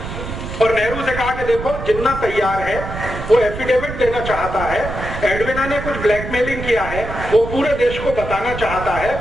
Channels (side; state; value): right; noise; rumble, 8 dB below the sound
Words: देखो जिन्ना तैयार है, वो एफिडेविट देना चाहता है, एडविना ने कुछ ब्लैकमेलिंग किया है, वो पूरे देश को बताना चाहता